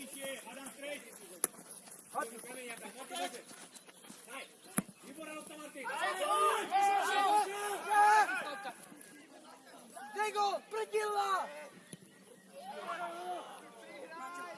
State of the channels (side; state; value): both; identical; correlation 1.00